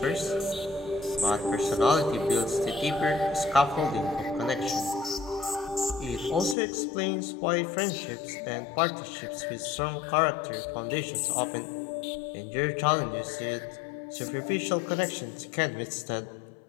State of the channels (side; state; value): right; drops out; at 6.6 s